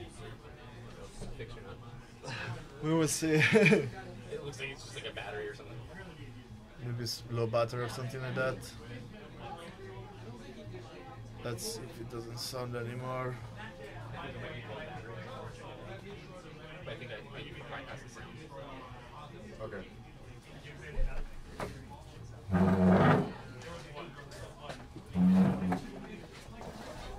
Fix or not? we will see. It looks like it's just like a battery or something. Maybe it's low battery or something like that. Let's see if it doesn't sound anymore. But I think you can bypass the sound. Okay.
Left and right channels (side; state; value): both; identical; correlation 1.00